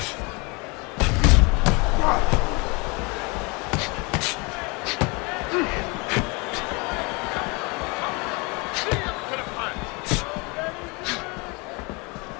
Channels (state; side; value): quieter; right; 28.6 dB